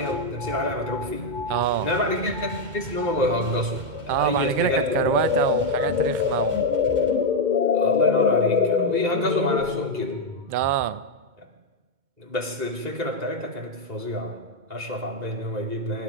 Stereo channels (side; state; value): left; late; 2.2 ms